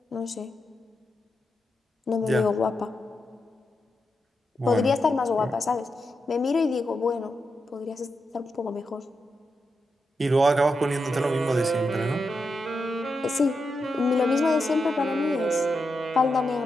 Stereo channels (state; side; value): normal; both; correlation 0.86